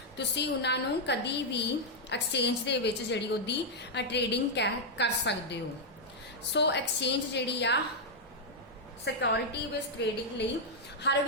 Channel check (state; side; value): normal; both; correlation -0.03